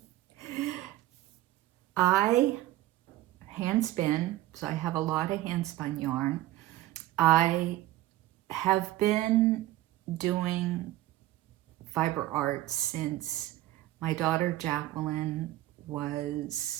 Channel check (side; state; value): left; quieter; 15.7 dB